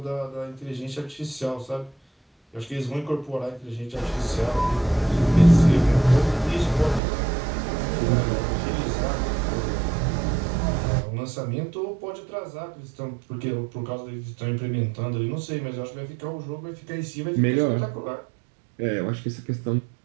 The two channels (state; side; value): drops out; left; at 7.0 s